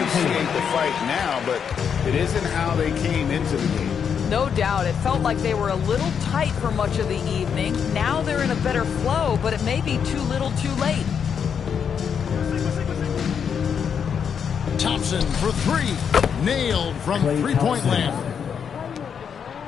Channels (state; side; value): quieter; right; 7.3 dB